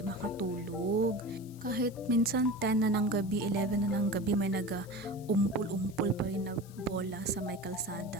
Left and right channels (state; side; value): noise; left; hiss, 23 dB below the sound